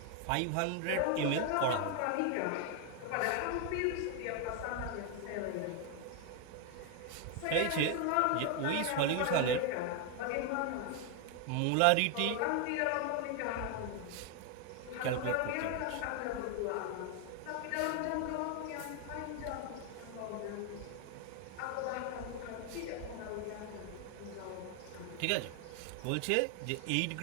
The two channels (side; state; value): both; different; correlation 0.01